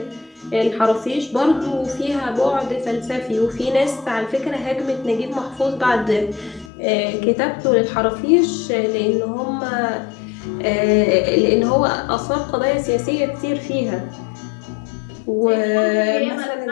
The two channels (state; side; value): drops out; right; at 6.7 s